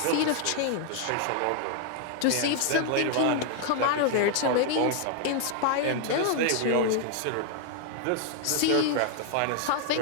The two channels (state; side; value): different; both; correlation 0.00